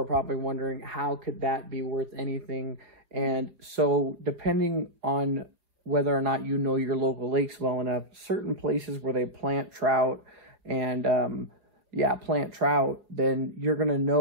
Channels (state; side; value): late; left; 5.1 ms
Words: probably wondering, how could that be worth anything? And so depending on whether or not you know your local lakes well enough, certain places where they plant trout and, plant trout, then you're going to